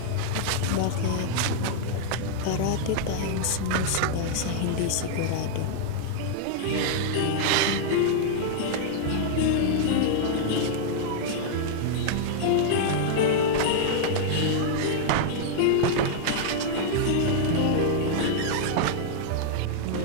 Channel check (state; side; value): different; both; correlation -0.01